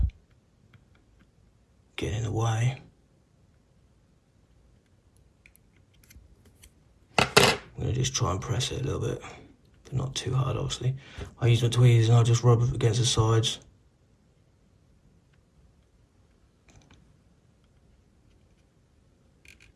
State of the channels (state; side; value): identical; both; correlation 1.00